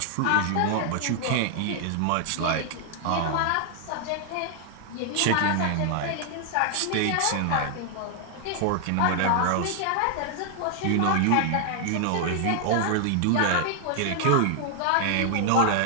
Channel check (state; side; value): different; both; correlation 0.00